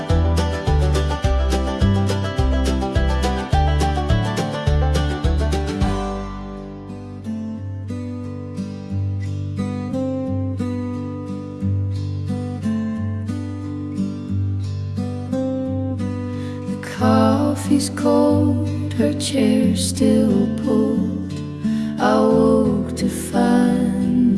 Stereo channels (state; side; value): identical; both; correlation 1.00